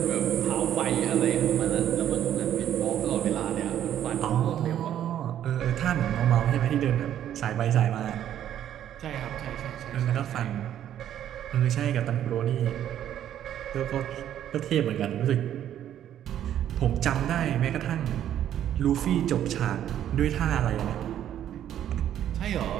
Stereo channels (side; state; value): left; quieter; 10.8 dB